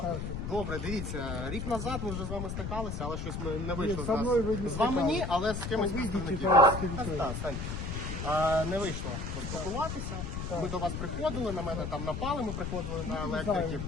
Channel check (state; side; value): noise; left; rumble, 4 dB below the sound